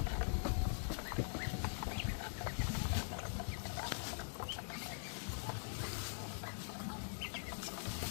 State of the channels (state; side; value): silent; right; digital silence